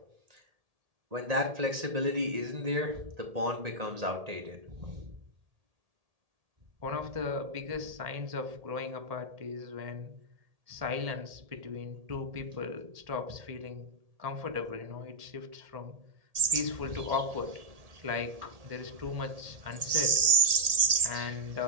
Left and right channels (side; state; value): left; late; 1.8 ms